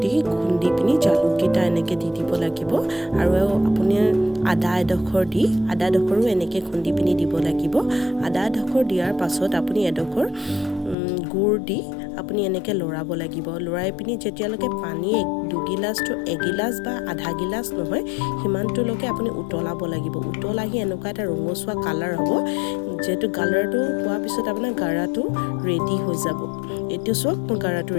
দি খুন্দি পিনি জালুক কিটা এনেকৈ দি দিব লাগিব আৰু আপুনি আদা এডখৰো এনেকৈ খুন্দি পিনি দিব লাগিব আদা এডখৰ দিয়াৰ পাছত আপুনি এডখৰ গুড় দি আপুনি এনেকৈ লৰাব লাগিব লৰাই পিনি যেতিয়ালৈকে পানী 2 গিলাস তো 1 গিলাস বা আধা গিলাস নহয় হিমানটোলৈকে আপুনি উতলাব লাগিব উতলাহি এনেকুৱা এটা ৰঙচুৱা কালাৰ হ'ব যেটো কালাৰটো পোৱাৰ পিছত আপোনাৰ গাৰাটো ৰেডি হৈ যাব এটো সব গাৰাটো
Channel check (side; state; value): right; drops out; at 11.0 s